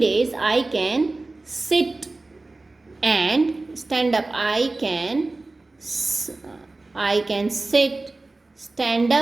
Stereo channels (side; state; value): left; quieter; 3.2 dB